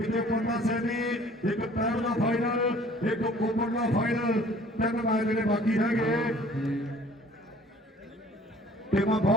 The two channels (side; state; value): both; normal; correlation 0.53